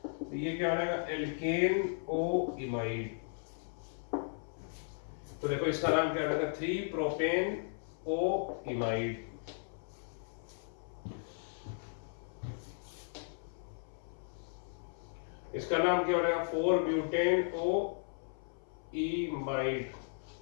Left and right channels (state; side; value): silent; right; 54 dB below the other